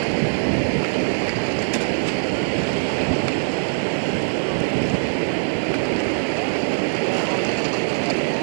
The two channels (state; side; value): silent; left; digital silence